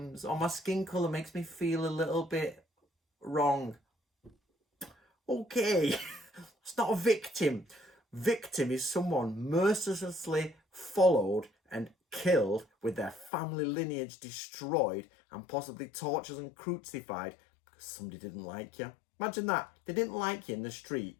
or my skin colour makes me feel a little bit wrong. Okay, it's not a victim. Victim is someone mercilessly followed and killed with their family lineage destroyed and possibly tortured and crucified because somebody didn't like you. Imagine that. They didn't like you in the street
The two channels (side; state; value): right; drops out; at 13.3 s